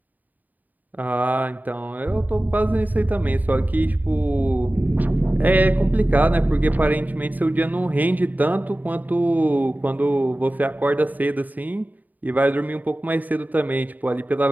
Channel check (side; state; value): left; late; 0.083 ms